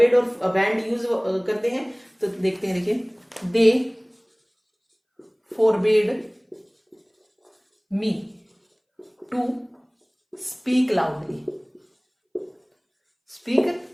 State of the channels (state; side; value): identical; both; correlation 1.00